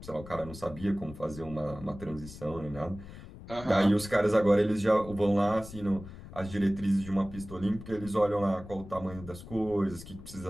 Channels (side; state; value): left; noise; rumble, 15 dB below the sound